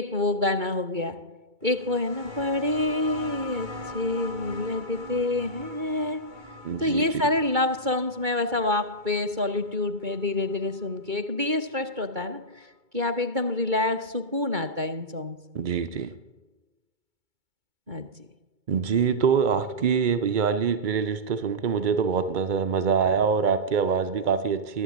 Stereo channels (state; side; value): late; left; 2.2 ms